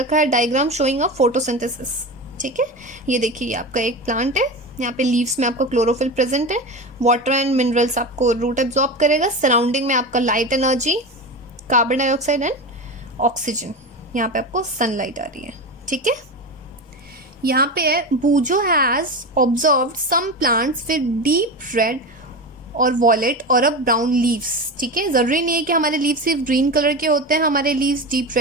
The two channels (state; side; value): normal; both; correlation 0.23